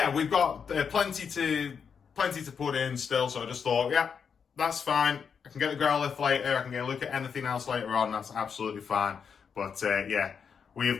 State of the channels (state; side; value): quieter; right; 6.6 dB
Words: we've got plenty to put in still. So I just thought, yeah, that's fine. I can get the Growlithe later. I can get a look at anything else later on. That's absolutely fine. But yeah, we